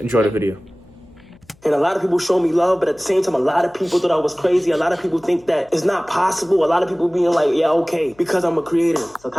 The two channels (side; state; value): left; noise; hum, 30 dB below the sound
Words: the video. And a lot of people show me love, but at the same time, a lot of people thought I was crazy. A lot of people think that it's not possible. A lot of people being like, yeah, okay, because I'm a creator. So